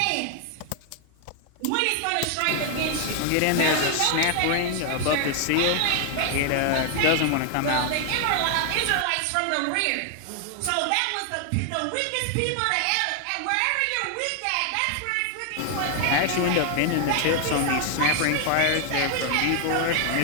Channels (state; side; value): different; both; correlation 0.00